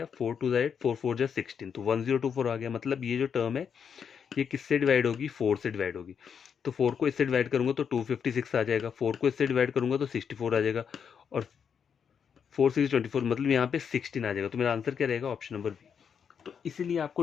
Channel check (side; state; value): right; quieter; 7.2 dB